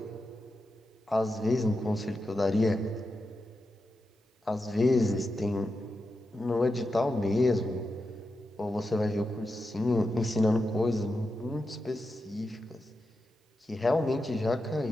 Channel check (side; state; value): both; normal; correlation 0.89